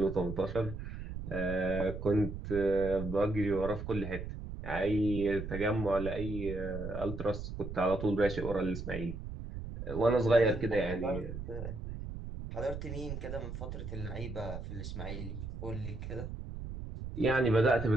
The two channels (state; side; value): noise; right; rumble, 8 dB below the sound